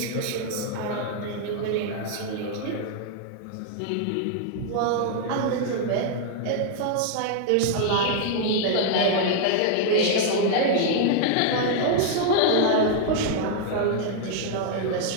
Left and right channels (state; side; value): different; both; correlation 0.00